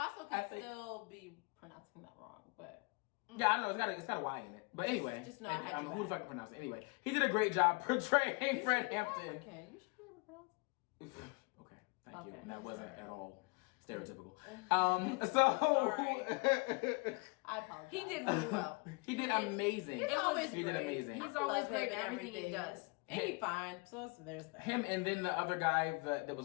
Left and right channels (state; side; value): quieter; right; 28.8 dB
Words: also could still be pronouncing that wrong, but yeah, I know it's got a Y in it. But anyway, just know I had who the fuck can pronounce it? Anyway, he did a great job portraying Fred Hampton. Okay, you should be able to pronounce it. Okay, thank you. Okay. And that wasn't at all stereotypical. I apologize. He did really well. He did amazing. He's always He great. did amazing. He's always great in everything he does. And he's fine. So there's that. Him and then the other guy that